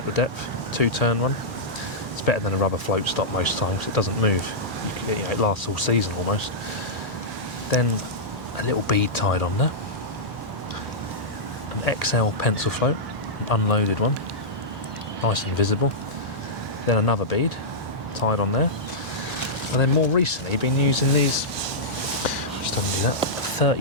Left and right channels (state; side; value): normal; both; correlation -0.12